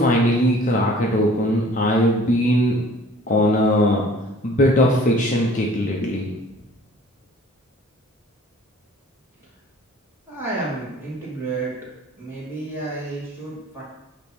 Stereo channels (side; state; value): both; normal; correlation 0.52